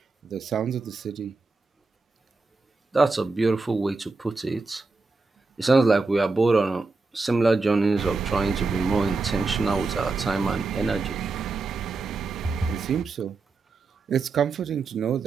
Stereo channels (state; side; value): quieter; left; 3.8 dB